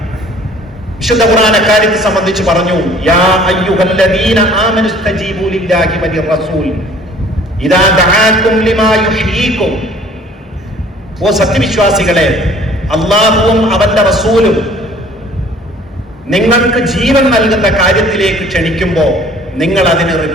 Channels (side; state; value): both; normal; correlation 0.53